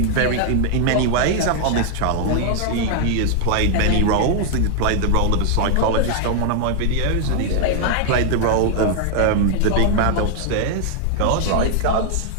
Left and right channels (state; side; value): different; both; correlation 0.00